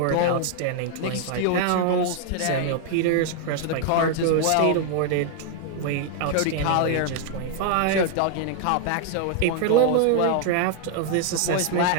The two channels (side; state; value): both; different; correlation 0.00